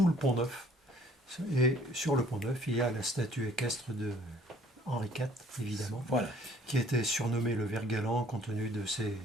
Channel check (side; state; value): both; normal; correlation 0.58